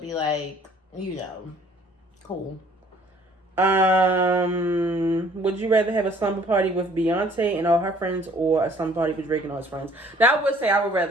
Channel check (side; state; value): both; normal; correlation 0.57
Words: like, cool. Would you rather have a slumber party with Beyonce and all her friends, or a slumber party with Drake and all his friends? Now, I would say I would